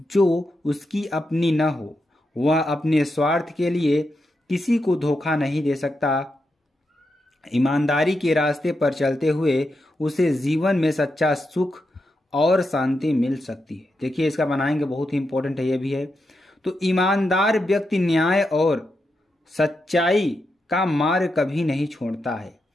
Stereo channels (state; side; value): normal; both; correlation 0.85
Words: जो उसकी अपनी न हो। वह अपने स्वार्थ के लिए किसी को धोखा नहीं दे सकता। ईमानदारी के रास्ते पर चलते हुए उसे जीवन में सच्चा सुख और शांति मिल सकती है। देखिए इसका बनाएंगे, बहुत ही इंपॉर्टेंट है, ये भी है। तो ईमानदार व्यक्ति न्याय और सच्चाई का मार्ग कभी नहीं छोड़ता है।